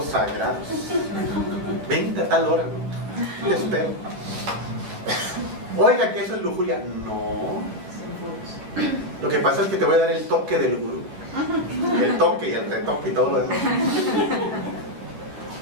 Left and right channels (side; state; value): left; late; 11 ms